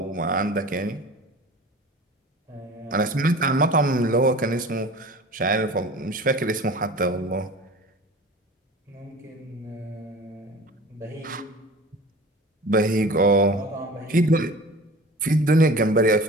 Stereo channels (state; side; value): normal; both; correlation 0.39